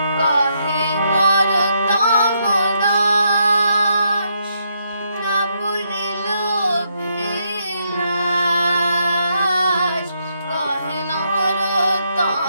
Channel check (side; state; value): both; inverted; correlation -0.77